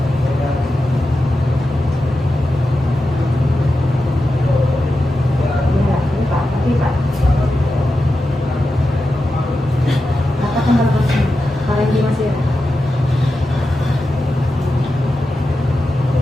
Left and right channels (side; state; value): both; normal; correlation 0.91